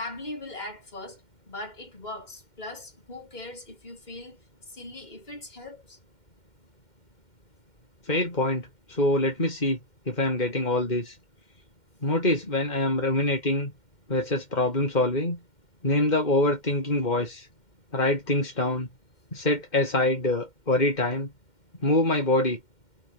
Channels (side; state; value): right; late; 2.1 ms